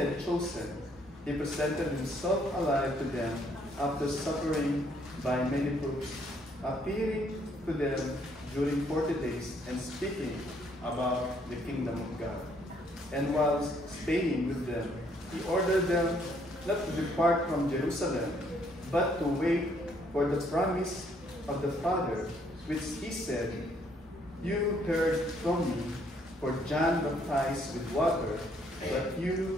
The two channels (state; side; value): normal; both; correlation 0.68